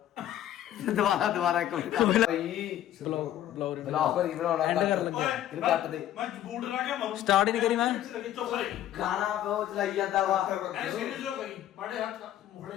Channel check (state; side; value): quieter; right; 12.1 dB